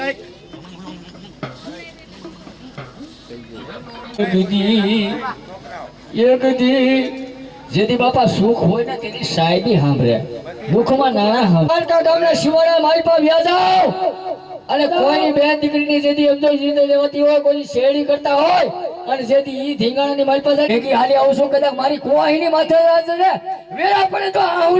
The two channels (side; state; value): both; identical; correlation 1.00